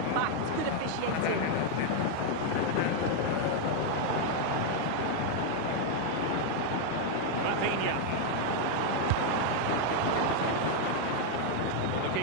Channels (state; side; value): different; both; correlation 0.00